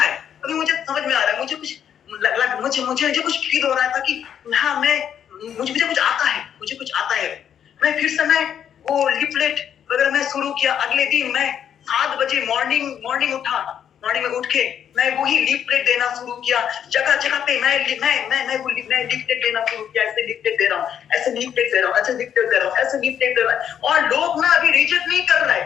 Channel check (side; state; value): right; quieter; 9.0 dB